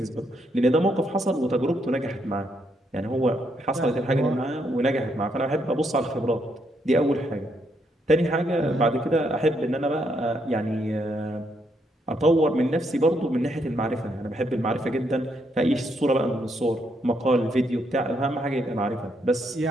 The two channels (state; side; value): normal; both; correlation 0.76